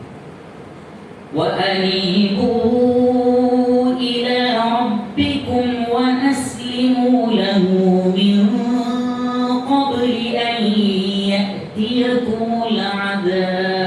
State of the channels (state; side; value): identical; both; correlation 1.00